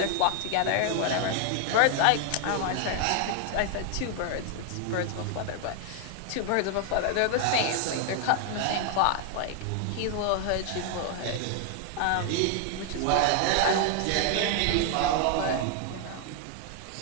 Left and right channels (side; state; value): both; different; correlation 0.00